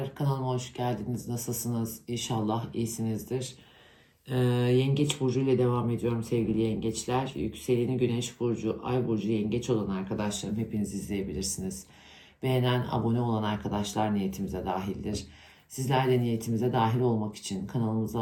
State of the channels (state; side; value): identical; both; correlation 1.00